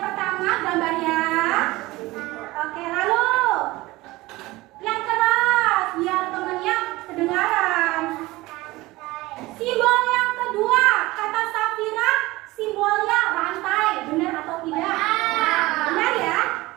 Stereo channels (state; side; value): quieter; left; 19.8 dB